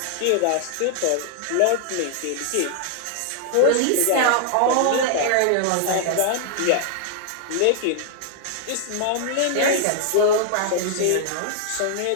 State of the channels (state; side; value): different; both; correlation 0.00